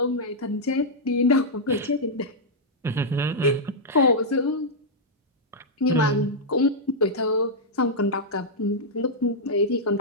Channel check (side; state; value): both; normal; correlation -0.06